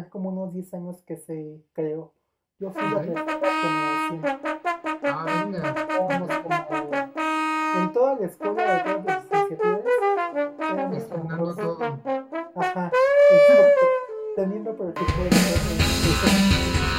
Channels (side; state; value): both; identical; correlation 1.00